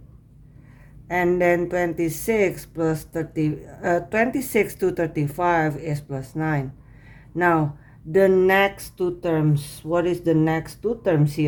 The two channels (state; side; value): identical; both; correlation 1.00